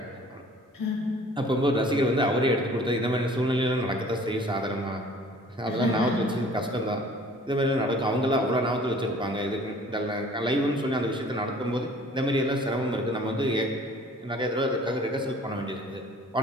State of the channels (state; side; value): normal; both; correlation 0.51